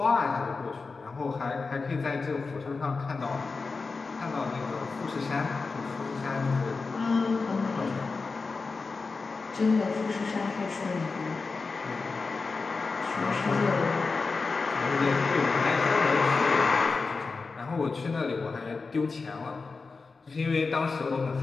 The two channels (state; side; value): quieter; right; 4.3 dB